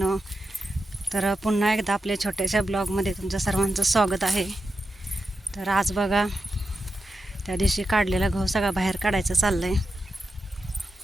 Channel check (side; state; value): both; normal; correlation 0.89